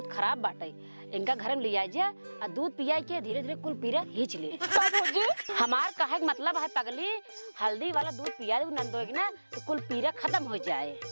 खराब बाटे, इनका घर में ले आई जा और दूध पिया के धीरे धीरे कुल पीरा हिच ले। हमार कहे का मतलब है पगली, हल्दी वाला दूध पिया दे नंदोई के ना, तो कुल पीरा खत्म हो जाए।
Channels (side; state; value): both; inverted; correlation -1.00